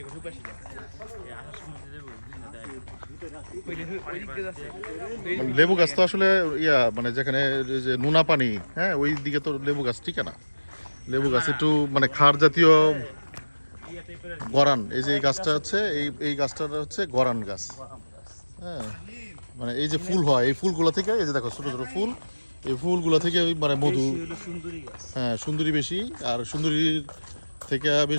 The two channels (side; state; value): both; inverted; correlation -1.00